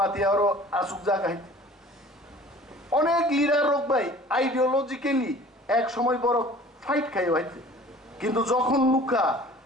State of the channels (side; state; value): both; normal; correlation 0.47